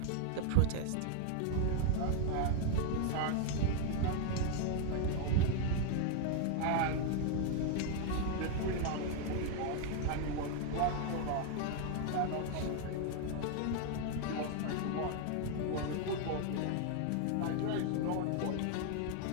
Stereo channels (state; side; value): different; both; correlation 0.00